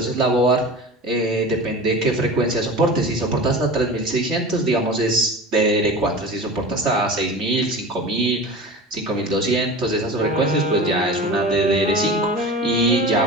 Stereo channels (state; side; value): normal; both; correlation 0.33